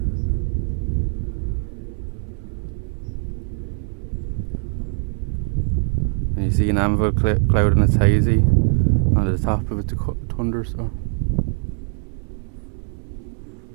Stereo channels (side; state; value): left; silent; 64 dB below the other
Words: You see an anvil cloud and it's hazy. On the top of it, the thunder, so.